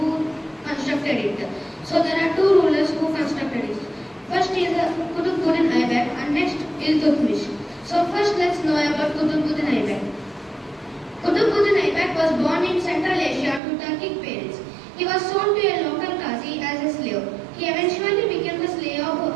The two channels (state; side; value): drops out; left; at 13.6 s